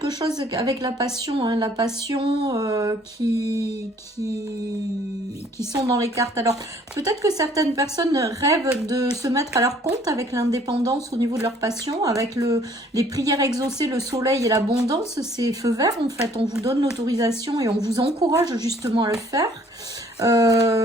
chose avec la passion. Hein, la passion qui sont dans les cartes. Alors, peut-être que certaines personnes rêvent de se mettre à leur compte avec l'indépendance au niveau de leur passion. Avec les prières exaucées, le soleil et l'abondance, c'est feu vert, en fait. On vous donne l'autorisation et on vous encourage justement à le faire.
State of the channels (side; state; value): both; normal; correlation 0.59